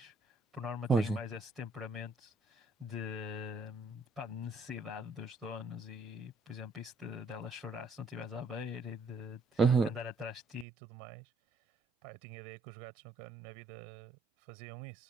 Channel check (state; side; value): drops out; left; at 10.7 s